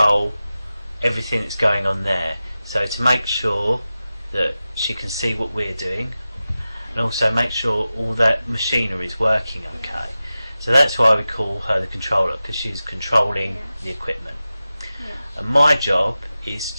everything that's going on there. So to make sure that she can see what we're doing, and also make sure all that machinery is working okay. So that's why we call her the controller, because she's controlling the equipment. And my job is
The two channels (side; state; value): both; inverted; correlation -0.94